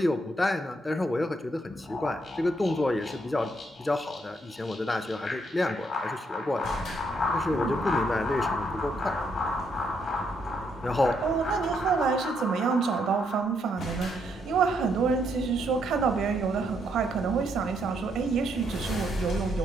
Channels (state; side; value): normal; both; correlation 0.75